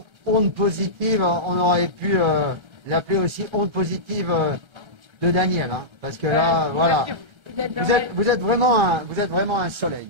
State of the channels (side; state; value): left; late; 1.3 ms